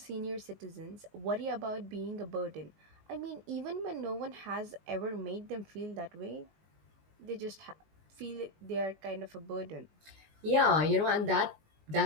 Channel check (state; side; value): late; left; 19 ms